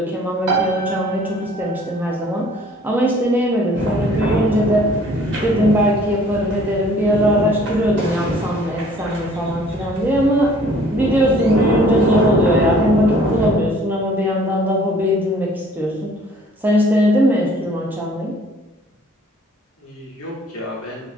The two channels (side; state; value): both; normal; correlation 0.55